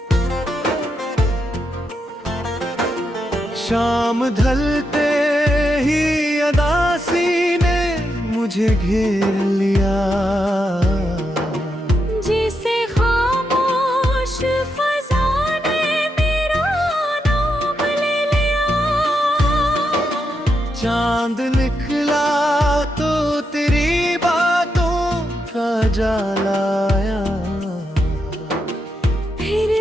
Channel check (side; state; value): both; normal; correlation 0.83